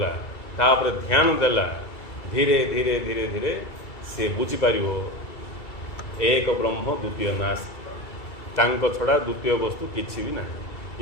तापर ध्यान देला धीरे धीरे धीरे धीरे से बुझीपार एक ब्रह्म द्वितीय नास्ति तांको छड़ा द्वितीय वस्तु किसी भी ना।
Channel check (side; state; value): right; late; 2.3 ms